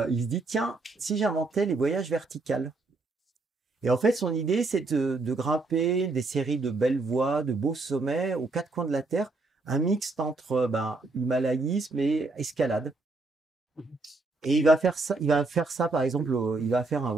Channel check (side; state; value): left; quieter; 3.4 dB